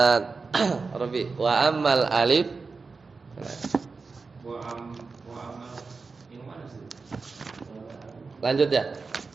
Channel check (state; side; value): quieter; left; 4.4 dB